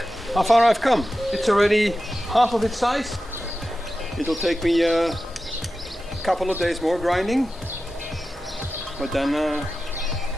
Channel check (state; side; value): normal; both; correlation 0.93